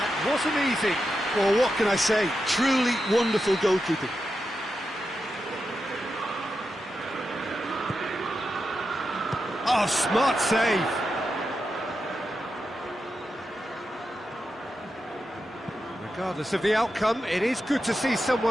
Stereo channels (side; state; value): both; normal; correlation 0.88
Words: wasn't easy. Well, what can I say? Truly wonderful goalkeeping. Oh, smart save. Regardless of the outcome, it is good to see